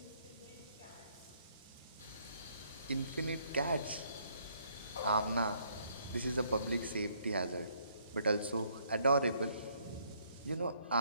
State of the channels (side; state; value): both; inverted; correlation -0.67